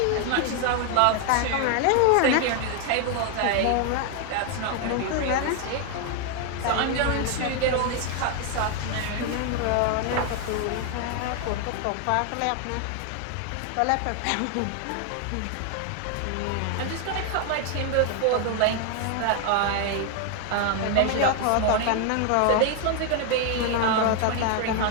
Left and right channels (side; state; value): both; different; correlation 0.01